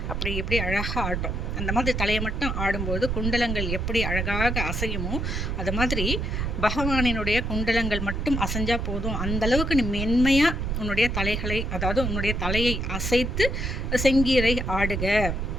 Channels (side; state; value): right; noise; rumble, 1 dB below the sound